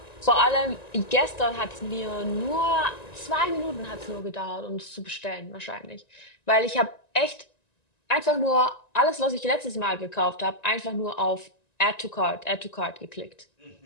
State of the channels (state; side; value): late; right; 1.9 ms